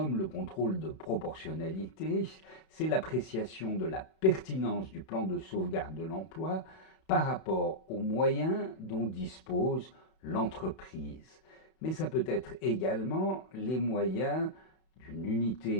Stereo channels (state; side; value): late; right; 31 ms